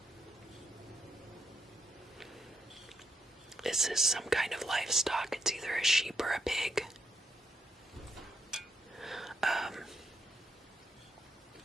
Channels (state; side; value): normal; both; correlation 0.78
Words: This is some kind of livestock. It's either a sheep or a pig.